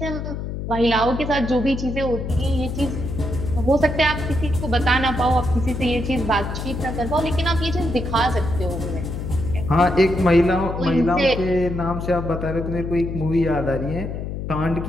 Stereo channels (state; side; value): noise; left; hum, 5 dB below the sound